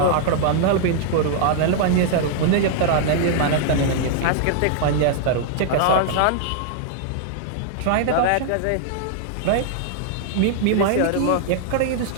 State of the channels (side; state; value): both; different; correlation -0.01